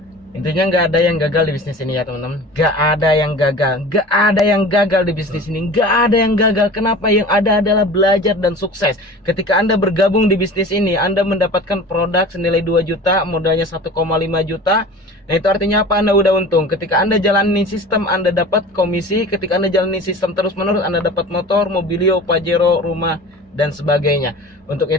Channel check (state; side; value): normal; both; correlation 0.39